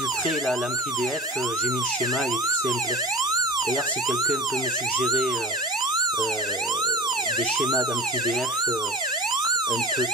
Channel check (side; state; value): both; normal; correlation 0.32